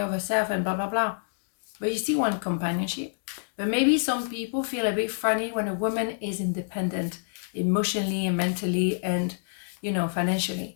of herself and blah, blah, blah. But you still want companionship. But maybe some people feel a bit funny when a woman is independent emotionally and mentally and, you know, financially.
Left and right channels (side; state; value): right; silent; digital silence